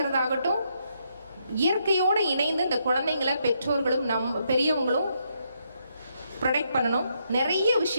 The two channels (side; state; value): both; inverted; correlation -0.77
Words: இயற்கையோடு இணைந்து இந்த குழந்தைங்களை பெற்றோர்களும் பெரியவங்களும் ப்ரொடெக்ட் பண்ணணும். நிறைய